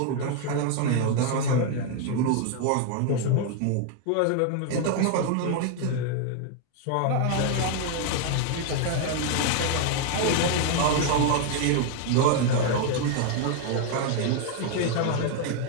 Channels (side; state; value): both; different; correlation 0.00